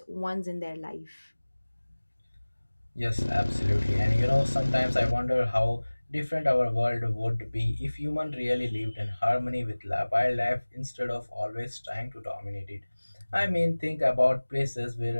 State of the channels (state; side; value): inverted; both; correlation -1.00